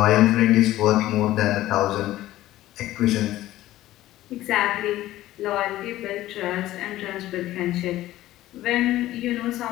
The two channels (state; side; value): quieter; right; 15.1 dB